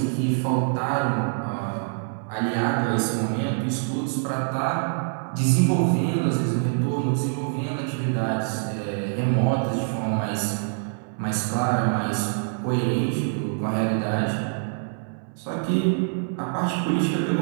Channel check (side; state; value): left; silent; 62 dB below the other